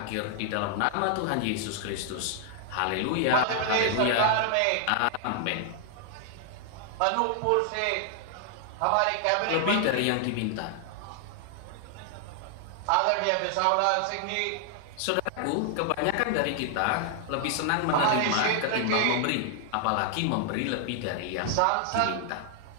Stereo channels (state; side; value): different; both; correlation 0.00